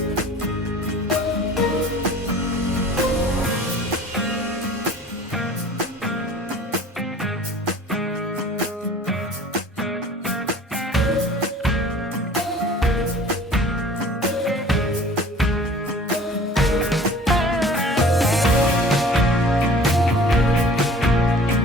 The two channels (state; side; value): normal; both; correlation 0.47